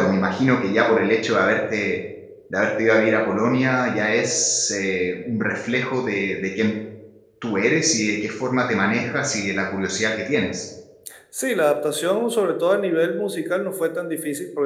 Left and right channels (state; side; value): identical; both; correlation 1.00